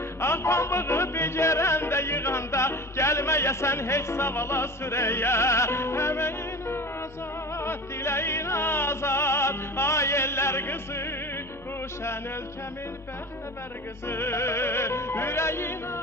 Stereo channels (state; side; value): normal; both; correlation 0.34